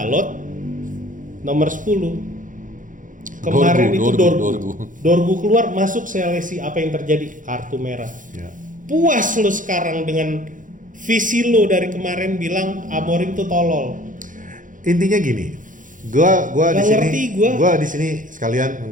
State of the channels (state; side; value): late; left; 0.38 ms